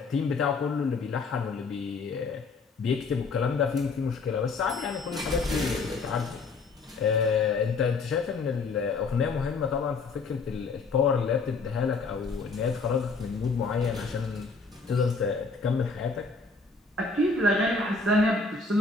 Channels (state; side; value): quieter; right; 4.2 dB